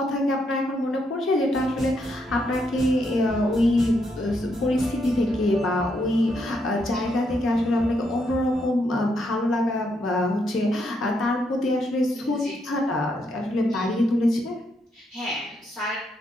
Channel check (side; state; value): both; normal; correlation 0.77